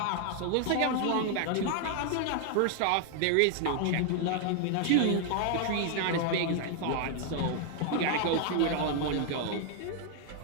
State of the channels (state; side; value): different; both; correlation 0.00